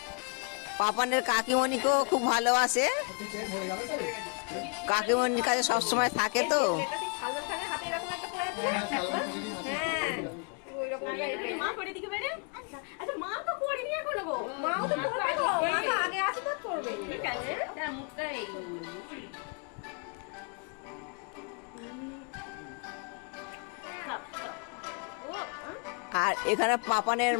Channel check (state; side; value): quieter; right; 37.6 dB